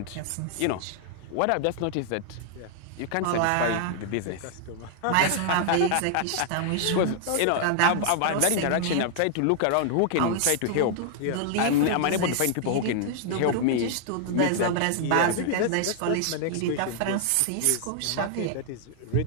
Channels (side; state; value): both; different; correlation 0.00